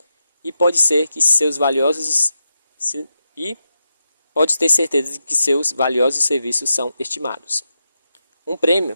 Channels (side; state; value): both; inverted; correlation -0.87